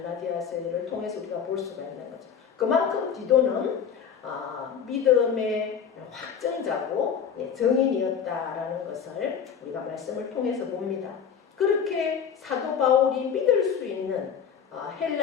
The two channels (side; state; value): right; quieter; 7.5 dB